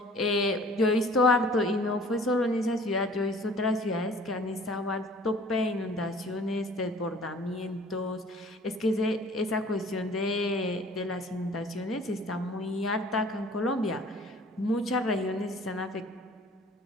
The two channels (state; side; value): normal; both; correlation 0.50